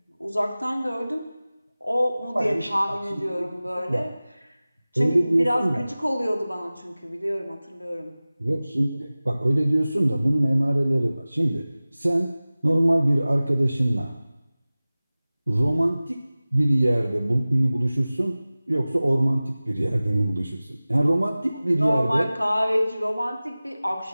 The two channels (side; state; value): both; inverted; correlation -0.98